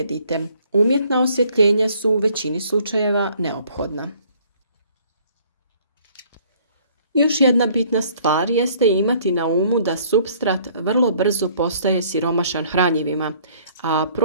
Umjetna osvjetljenja su u većini slučajeva neophodna. Još jedna bitna stvar jeste imati na umu da supstrat vrlo brzo postaje siromašan hranjivima, a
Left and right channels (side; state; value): both; inverted; correlation -0.59